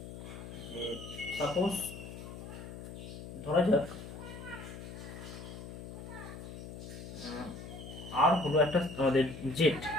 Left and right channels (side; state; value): left; noise; hum, 11 dB below the sound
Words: যে সাপোজ ধরা যাক আর হলো একটা আমাদের জেড,